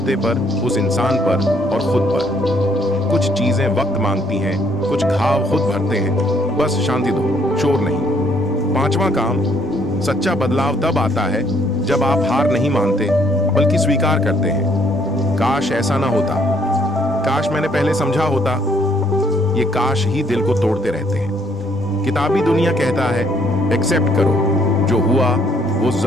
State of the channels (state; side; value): noise; right; rumble, 21 dB below the sound